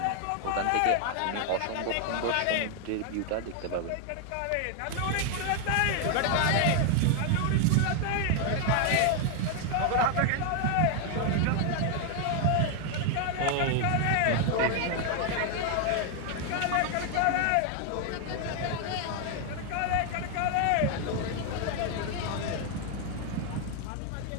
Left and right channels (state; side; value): different; both; correlation 0.00